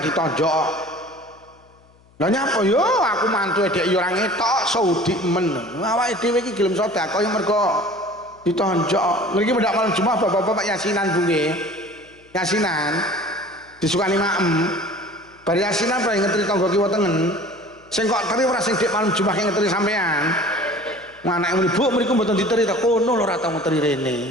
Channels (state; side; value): noise; left; hum, 30 dB below the sound